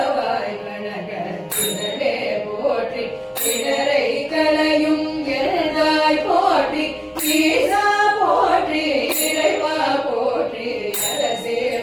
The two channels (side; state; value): both; identical; correlation 1.00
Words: கனக திரளே போற்றி இடரை கலையும் எழுதாய் போற்றி ஈசா போற்றி இறைவா போற்றி அரசே